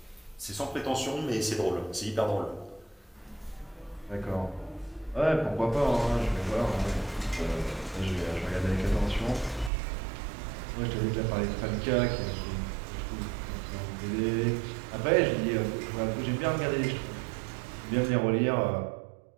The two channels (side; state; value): left; drops out; at 9.7 s